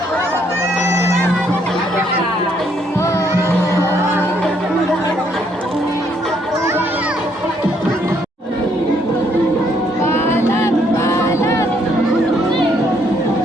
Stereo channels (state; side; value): normal; both; correlation 0.70